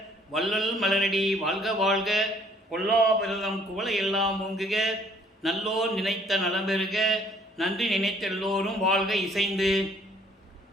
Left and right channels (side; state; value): both; normal; correlation 0.60